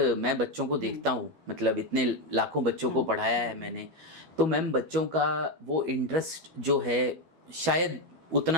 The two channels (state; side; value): late; left; 12 ms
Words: मैं बच्चों को देखता हूँ, मतलब इतने लाखों बच्चों को पढ़ाया है मैंने, तो मैम बच्चों का वो इंटरेस्ट जो है शायद